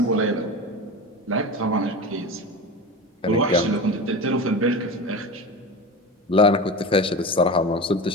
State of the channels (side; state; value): both; normal; correlation 0.27